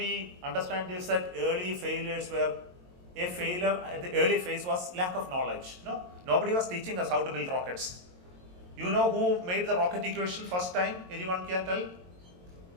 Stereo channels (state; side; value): late; left; 22 ms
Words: understand is that early failures were a failure at the early phase was lack of knowledge. Nobody was teaching us how to build rockets. You know who made the rocket equation first time? Anyone can tell?